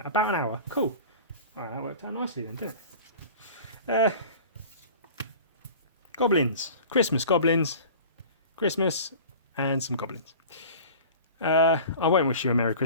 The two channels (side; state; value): both; inverted; correlation -0.40